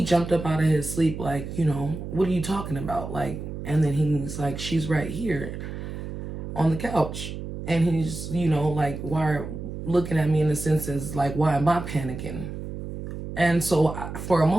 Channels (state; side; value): noise; right; hum, 8 dB below the sound